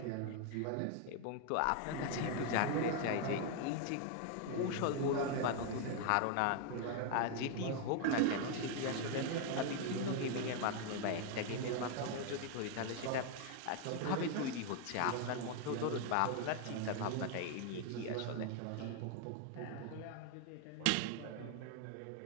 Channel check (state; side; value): different; both; correlation 0.00